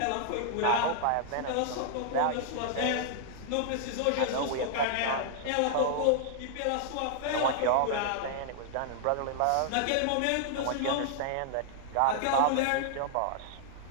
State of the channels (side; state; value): both; different; correlation -0.01